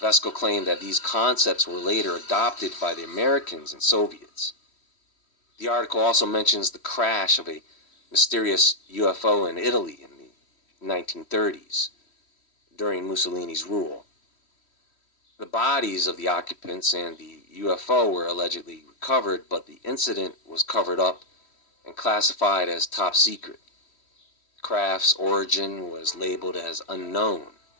claimed that these concepts were later adopted by the Americans and Soviets. The article also mentions the crash of a mysterious UFO in Italy in the 1930s, during Mussolini's rule. The bodies of the occupants and the UFO were allegedly recovered, but the incident was covered up and classified as top secret. Craft's origin was labeled as unknown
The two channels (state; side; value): late; right; 3.1 ms